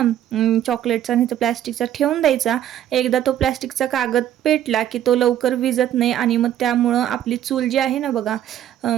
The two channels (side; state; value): left; quieter; 11.3 dB